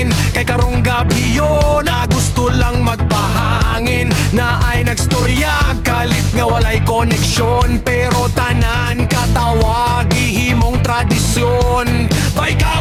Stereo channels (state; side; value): identical; both; correlation 1.00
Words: kay karong gabi yo na gusto lang magpahangin. Naay nagstorya kalit nga walay koneksyon, pero tanan katawa gihimong tradisyon. Bay